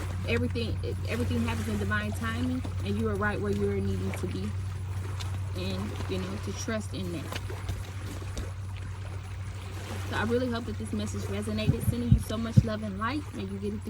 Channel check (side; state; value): both; identical; correlation 1.00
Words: everything happens in divine timing, and you are right where you are needing to be, and, you know, to trust in that. So I really hope that this message resonated. Sending you so much love and light. May you get it